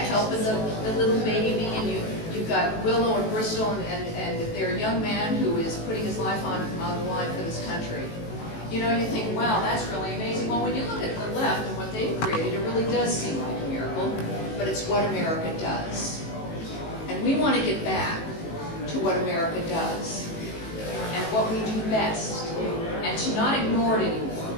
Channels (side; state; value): right; late; 18 ms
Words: the little baby, and you've got Willow and Bristol and their young man who is putting his life on the line for this country. You know, you think, wow, that's really amazing. Well, when you look at the left and what they've created, it really does seem like a miracle, but it's what America does. And we want to get back to what America does and what we do best, and to not ignore it